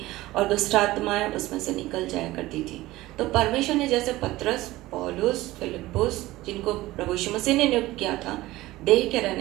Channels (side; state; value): left; quieter; 17.8 dB